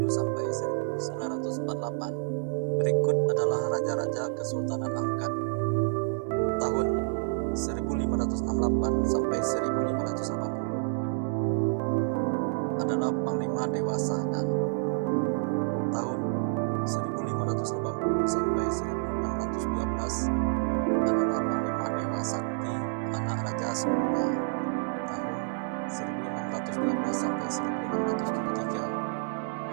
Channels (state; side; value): silent; left; 59 dB below the other